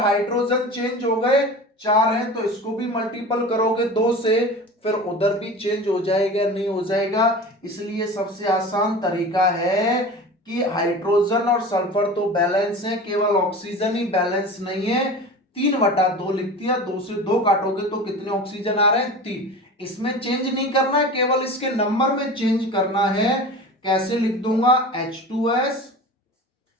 चेंज हो गए 4 हैं तो इसको भी मल्टीपल करोगे 2 से, फिर उधर भी चेंज हो जाएगा नहीं हो जाएगा। इसलिए सबसे आसान तरीका है कि हाइड्रोजन और सल्फर तो बैलेंस है, केवल ऑक्सीजन ही बैलेंस नहीं है। 3/2 लिख दिया, 2 से 2 काटोगे तो कितने ऑक्सीजन आ रहे हैं 3। इसमें चेंज नहीं करना है, केवल इसके नंबर में चेंज करना है। कैसे लिख दूंगा H2S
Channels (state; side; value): normal; both; correlation 0.34